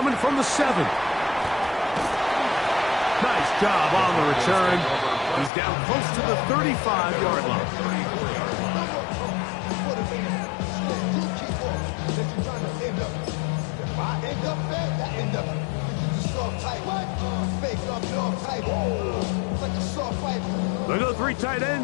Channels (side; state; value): right; drops out; at 5.5 s